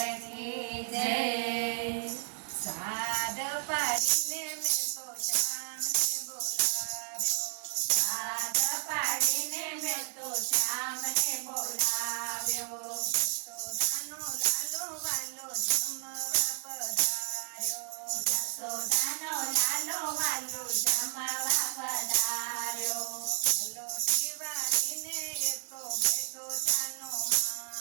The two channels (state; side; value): silent; left; digital silence